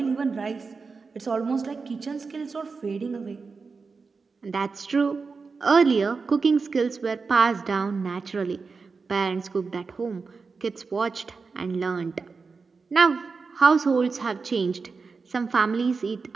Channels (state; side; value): quieter; left; 4.7 dB